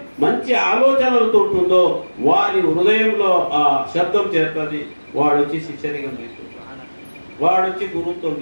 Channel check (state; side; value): inverted; both; correlation -1.00